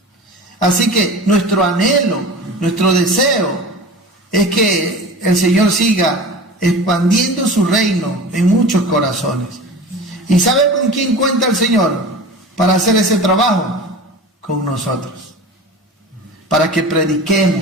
Así que nuestro anhelo, nuestro deseo es que el Señor siga expandiendo su reino en muchos corazones. ¿Y sabe con quién cuenta el Señor para hacer ese trabajo? Con nosotros. Para que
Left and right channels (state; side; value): normal; both; correlation 0.35